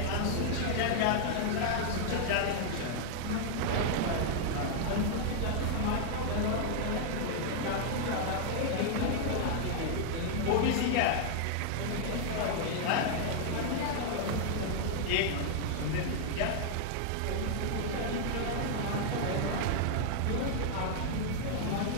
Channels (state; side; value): different; both; correlation 0.00